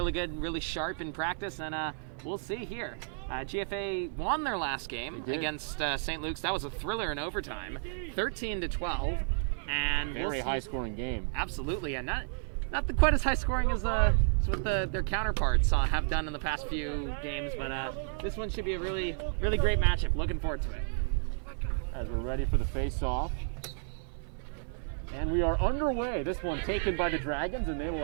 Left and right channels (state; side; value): silent; left; 57 dB below the other